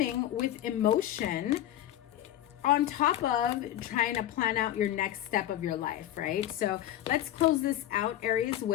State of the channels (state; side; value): quieter; right; 12.5 dB